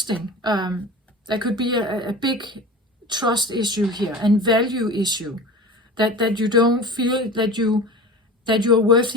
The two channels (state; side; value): normal; both; correlation 0.34